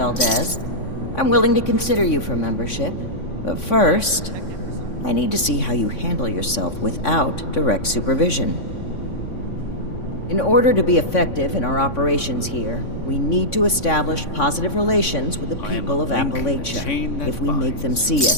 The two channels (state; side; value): late; right; 3.6 ms